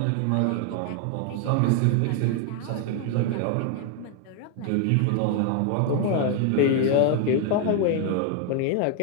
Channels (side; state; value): both; different; correlation 0.00